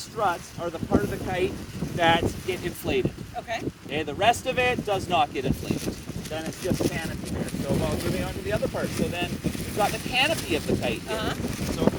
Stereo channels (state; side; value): identical; both; correlation 1.00